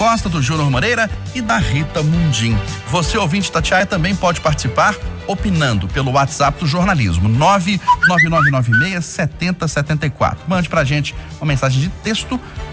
do Júnior Moreira e da Rita Mundim. Você, ouvinte Itatiaia, também pode participar opinando pelo WhatsApp do jornalismo 999967074. Mande pra gente uma mensagem de texto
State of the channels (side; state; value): both; identical; correlation 1.00